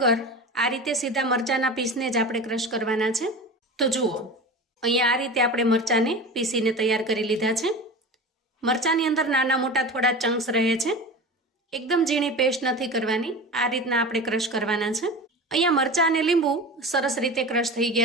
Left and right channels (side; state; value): both; normal; correlation 0.31